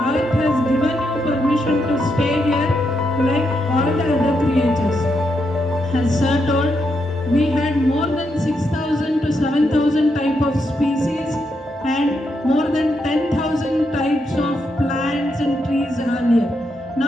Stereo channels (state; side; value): normal; both; correlation 0.81